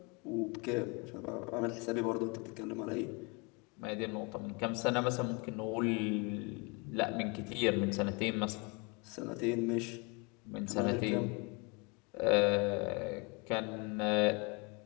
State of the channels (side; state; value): right; quieter; 30.2 dB